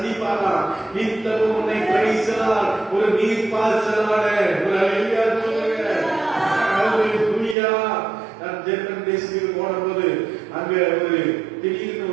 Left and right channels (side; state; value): left; drops out; at 7.6 s